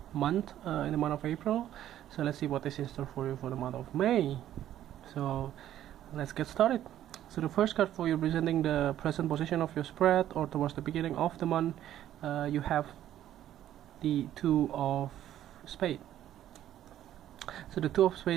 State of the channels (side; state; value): left; quieter; 11.9 dB